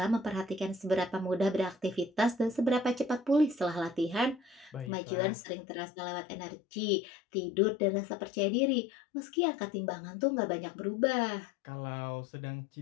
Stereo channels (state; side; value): drops out; right; at 4.9 s